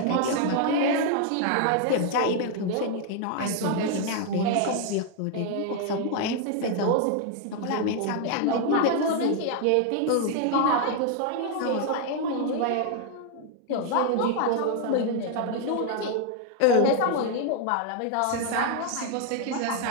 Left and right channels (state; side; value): different; both; correlation 0.00